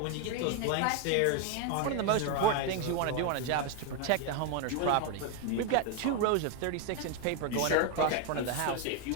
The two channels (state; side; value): different; both; correlation 0.01